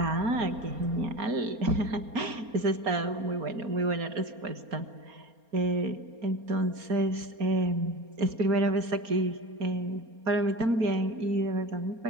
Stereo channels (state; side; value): late; left; 4.3 ms